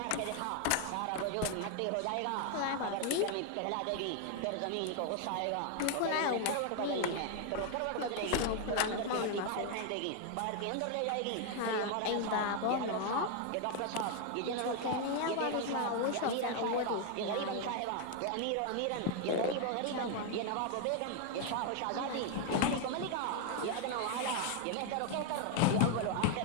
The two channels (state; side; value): different; both; correlation 0.00